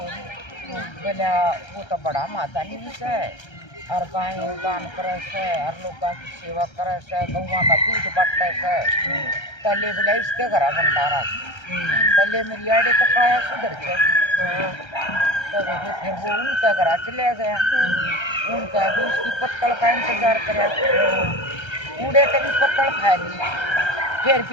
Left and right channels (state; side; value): late; right; 1.3 ms